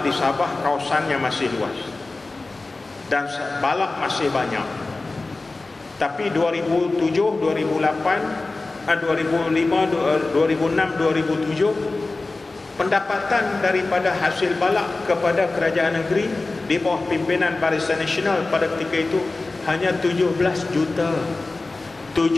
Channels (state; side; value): quieter; right; 3.4 dB